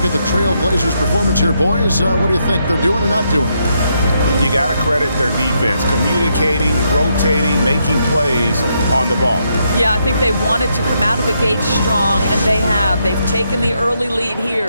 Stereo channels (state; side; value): inverted; both; correlation -0.78